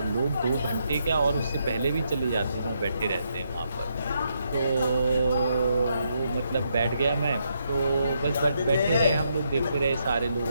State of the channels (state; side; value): inverted; both; correlation -0.78